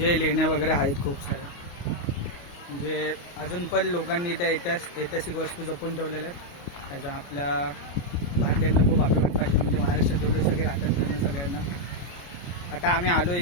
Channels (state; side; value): late; right; 28 ms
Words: लेण्या वगैरे आहेत खूप साऱ्या. म्हणजे अजून पण लोकांनी त्या ऐतिहासिक वस्तू जपून ठेवलेल्या आहेत. त्याच्या आपल्या भारतीयांना खूप अभिमान पाहिजे. म्हणजे महाराष्ट्रात जेवढे सगळे राहतात त्यांना सगळ्यांना. आता आम्ही आलो